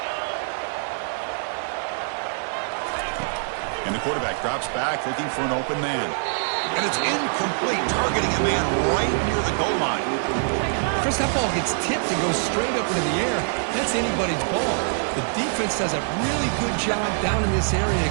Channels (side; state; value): left; silent; 62 dB below the other